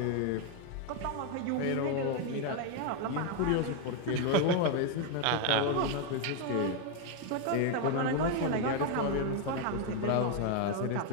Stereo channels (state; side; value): different; both; correlation 0.01